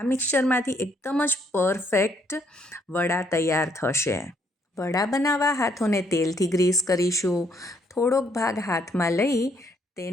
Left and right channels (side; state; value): both; normal; correlation 0.69